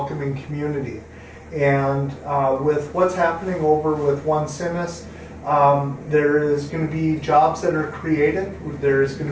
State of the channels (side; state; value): both; identical; correlation 1.00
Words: community. And with what's happening over with One Simis, there is going to be jobs that are created. There is going